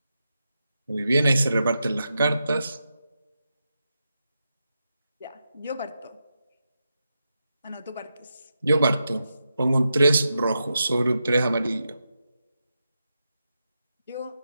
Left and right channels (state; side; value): inverted; both; correlation -0.88